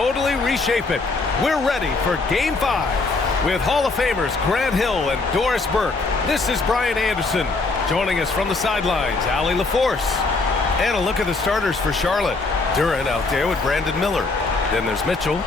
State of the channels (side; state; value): right; quieter; 3.7 dB